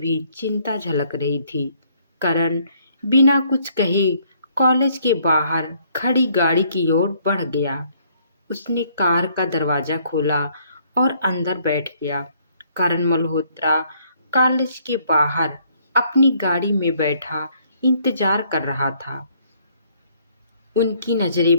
चिंता झलक रही थी। करण बिना कुछ कहे कॉलेज के बाहर खड़ी गाड़ी की ओर बढ़ गया। उसने कार का दरवाजा खोला और अंदर बैठ गया। करण मल्होत्रा कॉलेज के बाहर अपनी गाड़ी में बैठा इंतजार कर रहा था। उनकी नजरें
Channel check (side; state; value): both; inverted; correlation -0.65